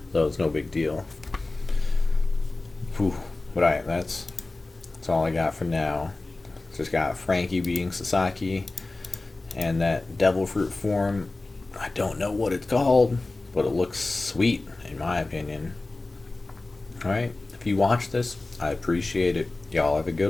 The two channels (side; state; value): right; quieter; 3.2 dB